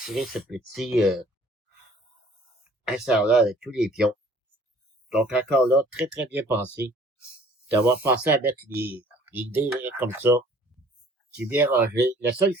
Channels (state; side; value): normal; both; correlation 0.54